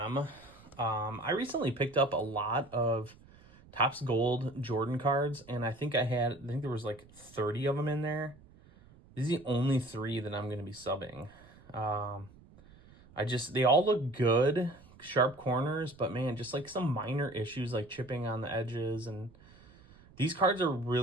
I recently picked up a lot of Topps Gold Jordan cards, and I think there was like 30 of them in there. These are the only 3 that I'm going to be subbing. They all look good, sharp corners, but man, just like some minor issues like chipping on the edges. And these cards are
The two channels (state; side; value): noise; right; rumble, 24 dB below the sound